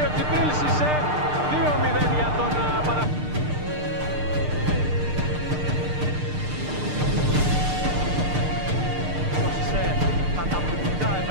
ο Τζιμπρίλ Σισέ, 2-0 για τον Παναθηναϊκό. Ο Σισέ καταπληκτικά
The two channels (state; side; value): late; left; 6.6 ms